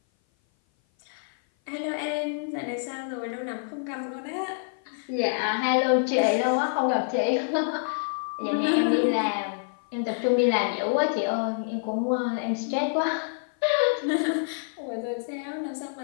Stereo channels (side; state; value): right; silent; 56 dB below the other